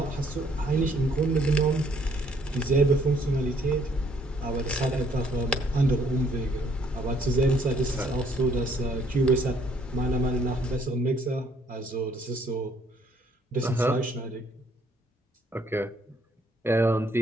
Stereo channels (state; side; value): normal; both; correlation 0.65